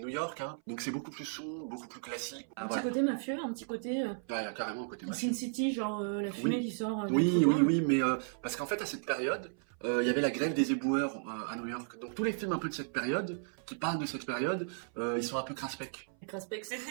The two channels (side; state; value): left; silent; 55 dB below the other